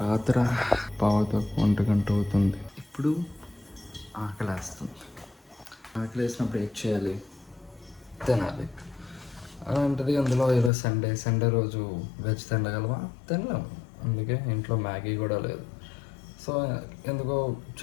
రాత్రి పావుతకు 1 గంట అవుతుంది. ఇప్పుడు ఆకలేస్తుంది. ఆకలేసినప్పుడు ఏం చేయాలి? తినాలి. అలాంటిది అందులో ఈరోజు సండే రోజు వెజ్ తినగలమా? తినలేము. అందుకే ఇంట్లో మ్యాగీ కూడా లేదు. సో ఎందుకో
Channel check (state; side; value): drops out; right; at 10.7 s